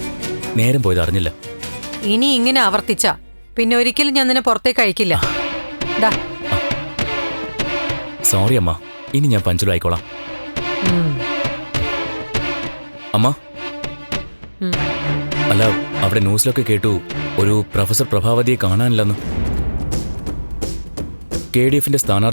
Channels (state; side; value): inverted; both; correlation -1.00